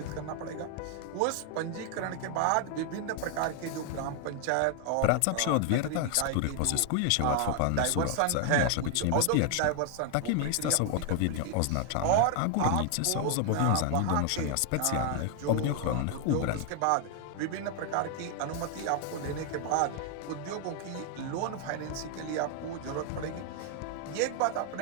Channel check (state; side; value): different; both; correlation 0.00